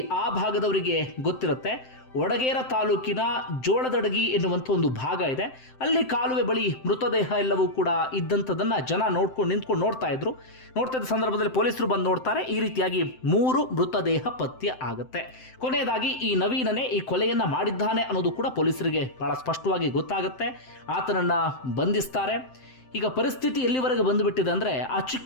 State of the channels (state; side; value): late; right; 7.7 ms